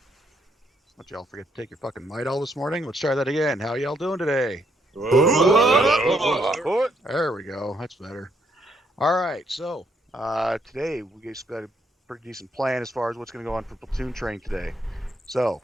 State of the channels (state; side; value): normal; both; correlation 0.73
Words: y'all forget to take your fucking Midol this morning? Let's try that again. How y'all doing today? There we go. That's better. Alright, so today we just got a pretty decent plan as far as what's going to go on for platoon training today. So,